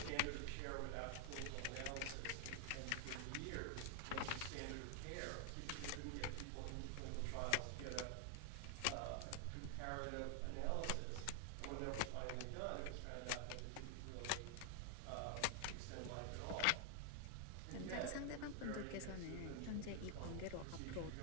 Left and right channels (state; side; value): different; both; correlation 0.00